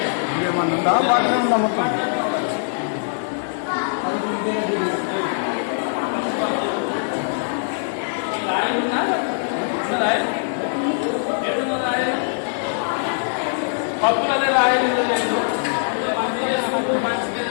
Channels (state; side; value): silent; right; 64 dB below the other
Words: ఉందా మొత్తం అప్పుడే రాయలు